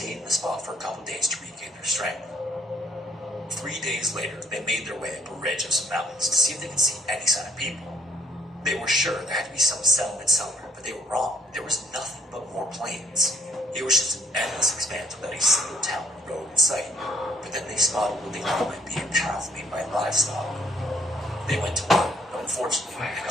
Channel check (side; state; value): both; normal; correlation 0.65